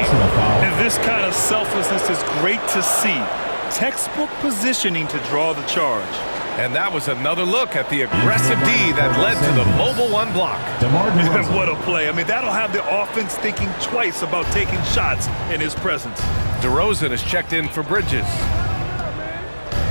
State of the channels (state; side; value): inverted; both; correlation -1.00